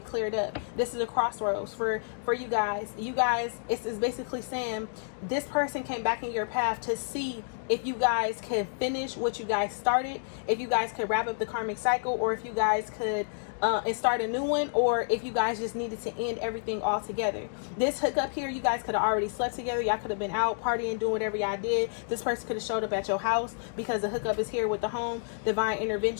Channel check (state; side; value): silent; right; digital silence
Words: up. This is a crossroads for you guys. You guys, it's basically saying this person came back in your path to see if you guys could finish what you guys started, if you guys could wrap up the karmic cycle, or if you guys could and start a new one, or if you guys just needed to end everything all together. This hookup here, you guys could have already slept together. Y'all could have been out partying, doing whatever y'all did. This person could have showed up at your house, because the hookup is here with the home, divine